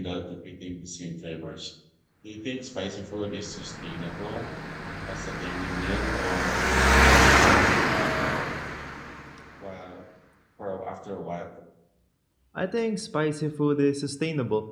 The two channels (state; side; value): identical; both; correlation 1.00